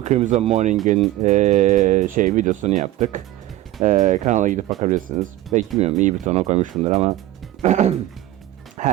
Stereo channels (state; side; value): quieter; left; 15.2 dB